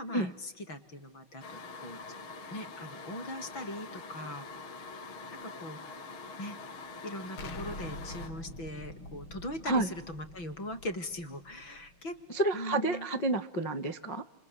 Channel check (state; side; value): late; right; 6.0 ms